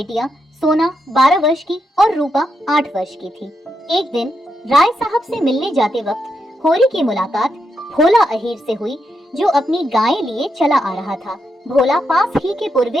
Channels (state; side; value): normal; both; correlation 0.83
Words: सोना 12 वर्ष की और रूपा 8 वर्ष की थी। एक दिन राय साहब से मिलने जाते वक्त होरी की मुलाकात भोला अहीर से हुई, जो अपनी गायें लिए चला आ रहा था। भोला पास ही के